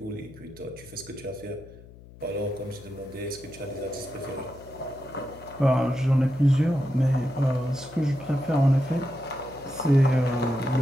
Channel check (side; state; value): left; noise; hum, 20 dB below the sound